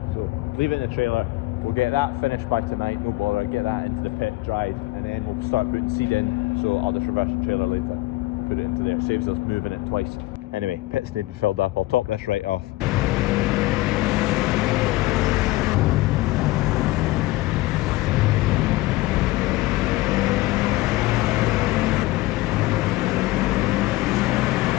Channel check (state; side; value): quieter; right; 19.2 dB